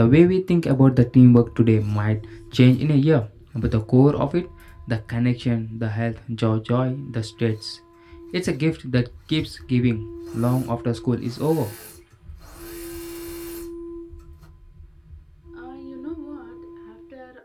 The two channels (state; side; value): identical; both; correlation 1.00